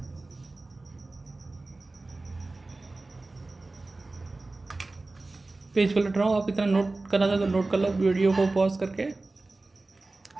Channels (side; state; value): left; quieter; 3.2 dB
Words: पेज पलट रहा हूँ, आप इतना नोट करना चाहो तो नोट कर लो वीडियो को पॉज करके।